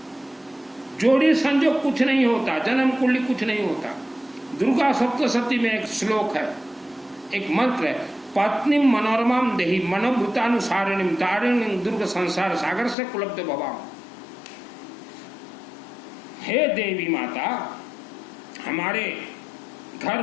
जोड़ी संजोग कुछ नहीं होता, जन्म कुंडली कुछ नहीं होता। दुर्गा सप्तशती में एक श्लोक है, एक मंत्र है, पत्नी मनोरमाम देहि मनोभूतानुसारिणीम तारिणीम दुर्ग संसार सागर से कुलब्ध भवाम। हे देवी माता, हमारे घर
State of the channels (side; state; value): right; drops out; at 13.0 s